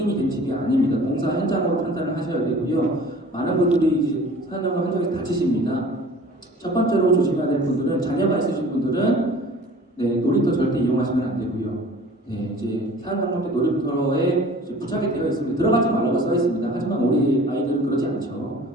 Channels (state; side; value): normal; both; correlation 0.46